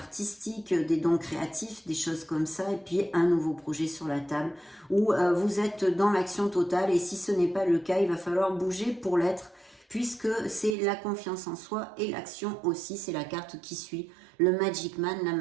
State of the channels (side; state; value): left; drops out; at 10.8 s